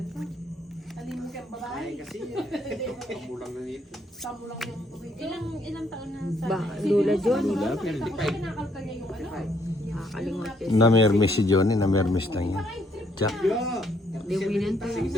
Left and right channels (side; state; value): both; normal; correlation 0.70